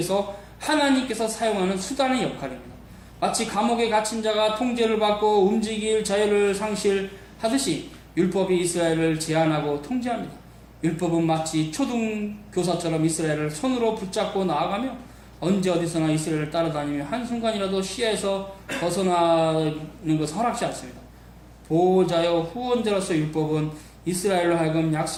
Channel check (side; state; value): both; identical; correlation 1.00